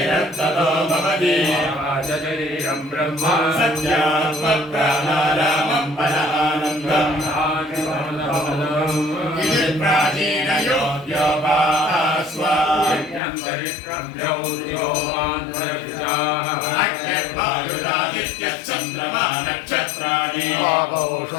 ततो भवति शरीरं ब्रह्म सत्यात्मप्राणारामं बलानन्दम् इति प्राचीनयोग्योपास्वाद्यन्तरिक्षं चन्द्रमा नक्षत्राणि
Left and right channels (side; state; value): right; drops out; at 13.2 s